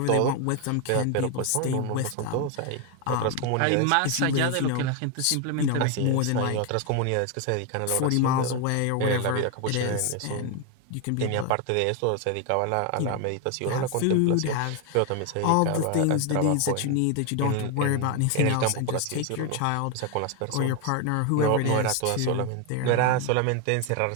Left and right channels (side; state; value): both; different; correlation 0.01